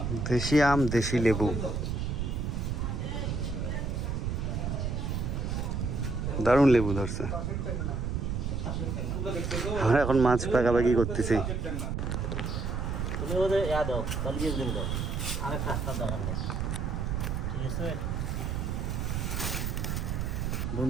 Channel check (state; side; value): noise; right; rumble, 1 dB below the sound